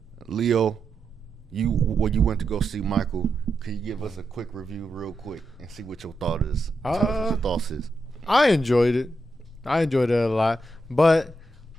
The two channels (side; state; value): both; normal; correlation 0.85